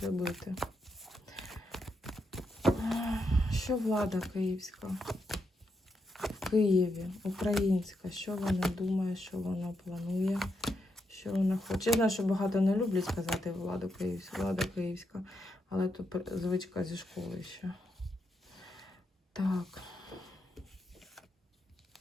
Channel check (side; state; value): both; normal; correlation 0.82